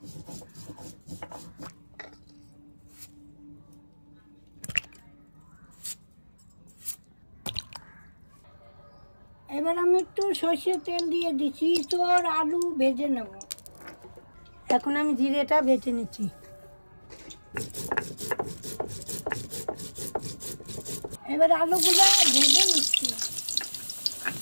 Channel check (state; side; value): inverted; both; correlation -1.00